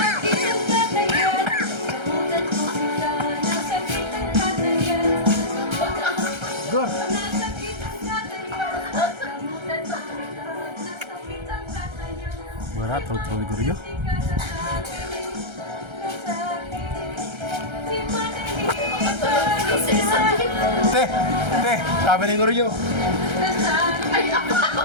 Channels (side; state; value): left; late; 1.3 ms